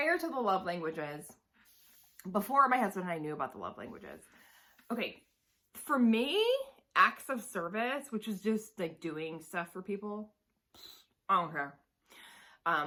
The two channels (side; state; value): both; identical; correlation 1.00